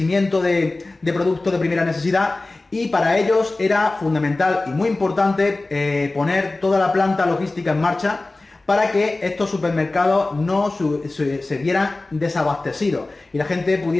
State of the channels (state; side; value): quieter; right; 3.1 dB